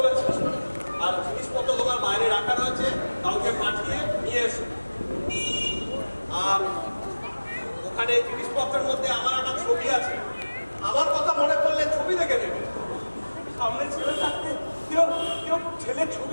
আর জিনিসপত্র তোমার বাইরে রাখা রয়েছে, কাউকে পাঠিয়ে নিয়ে এসো। আর ওখানে জিনিসপত্রের মধ্যে আমার একটা ছবি আছে, আমার কথা মনে করলে ছবি দেখে নেবে। সামনে ছেলে থাকতে কেউ কেউ ছেলের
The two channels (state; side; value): inverted; both; correlation -1.00